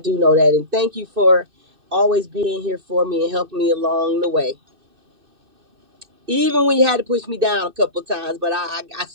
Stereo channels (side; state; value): left; late; 2.6 ms